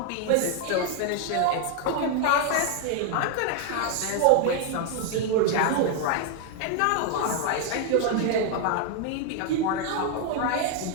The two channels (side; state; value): both; different; correlation 0.00